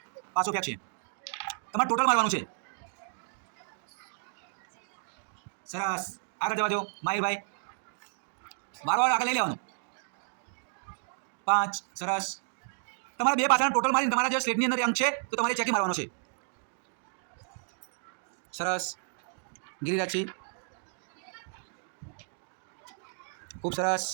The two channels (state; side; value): silent; left; digital silence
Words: પાછો ફેંક છે. તમારે ટોટલ મારવાનું છે. સરસ, આગળ જવા દો માહિરભાઈ. વારો આગળ લઈ લેવાનું. 5. સરસ. તમારે 2 પાસાના ટોટલ મારીને તમારા જે સ્ટેટની અંદર અંક છે તો તમારે ચેકી મારવાનો છે. સરસ, ગિરિરાજજી ખૂબ સરસ.